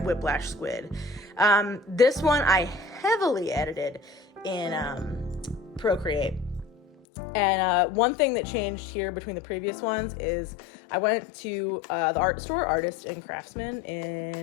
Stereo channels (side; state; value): right; drops out; at 7.0 s